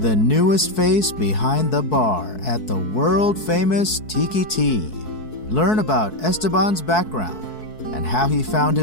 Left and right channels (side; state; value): right; late; 4.6 ms